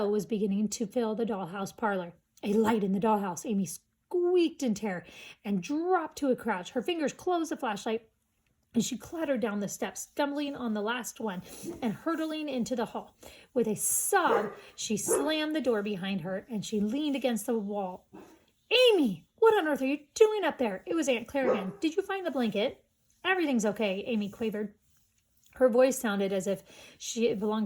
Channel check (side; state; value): both; identical; correlation 1.00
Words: was beginning to fill the dollhouse parlor. A light in the dollhouse. Amy squeaked in terror and dropped to a crouch. Her fingers closed the flashlight, and she clattered down the steps, stumbling on the last one and hurtling into the hall. With a sob, she slammed the door behind her, and she leaned against the wall. Amy, what on earth are you doing up there? It was Aunt Claire again. Did you find the blanket? Everything's okay, Amy quavered. Her voice sounded as if she belonged